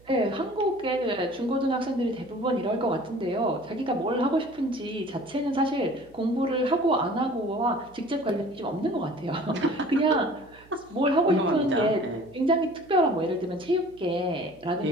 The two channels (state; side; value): noise; right; hum, 27 dB below the sound